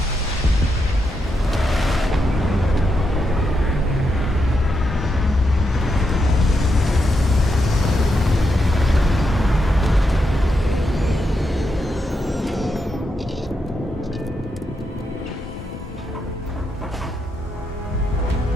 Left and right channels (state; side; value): normal; both; correlation 0.83